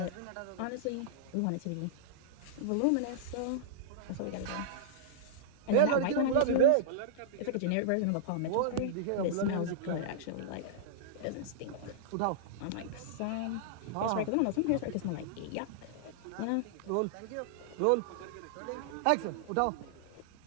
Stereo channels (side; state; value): both; different; correlation -0.02